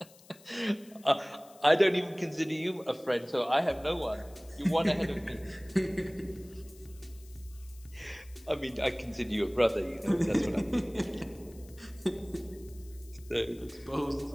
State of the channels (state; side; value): noise; left; hiss, 24 dB below the sound